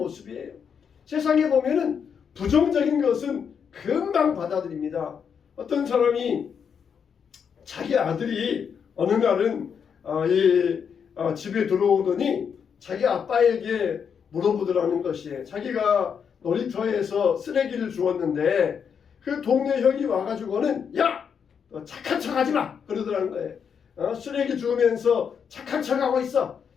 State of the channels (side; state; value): right; quieter; 7.0 dB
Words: 세상에 보면은 부정적인 것은 금방 받아들입니다. 어떤 사람이 자기 아들이 어느 날은 집에 들어오더니 자기 아빠에게 물어보더라는 것이에요. 자기가 놀이터에서 쓰레기를 주웠는데 그 동네 형이 와가지고는 야! 너 착한 척 하지 마! 그러더라는 거예요. 쓰레기 주우면서 착한 척 하고 있어.